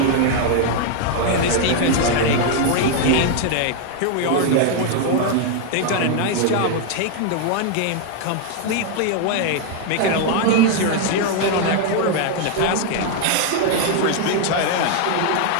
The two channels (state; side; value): different; both; correlation 0.00